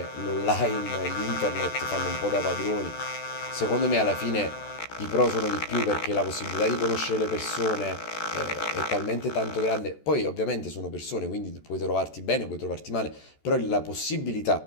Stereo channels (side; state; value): right; late; 14 ms